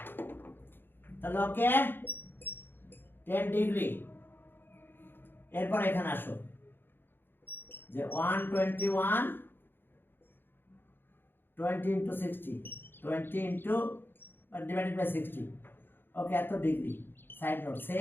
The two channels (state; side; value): late; right; 0.10 ms